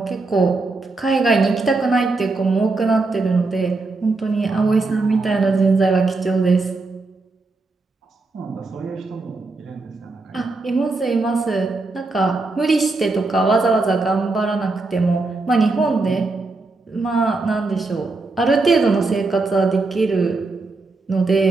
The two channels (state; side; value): quieter; left; 3.6 dB